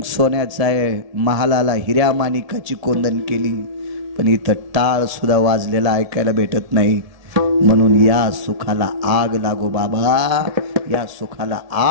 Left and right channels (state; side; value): late; left; 1.7 ms